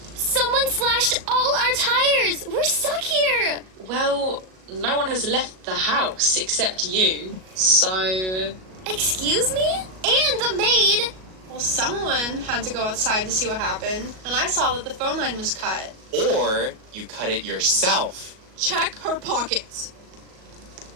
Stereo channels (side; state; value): left; late; 38 ms